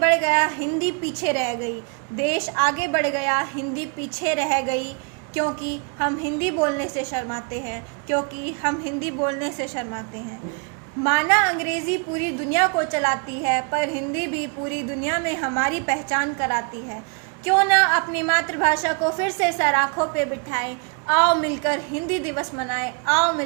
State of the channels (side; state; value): left; quieter; 36.9 dB